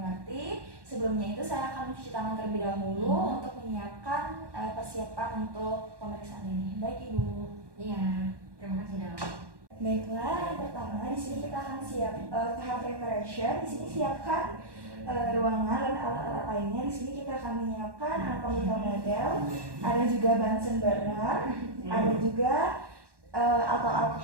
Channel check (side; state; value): left; late; 1.1 ms